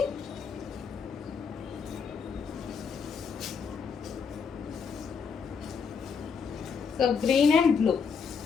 So green and blue.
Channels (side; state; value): right; quieter; 5.9 dB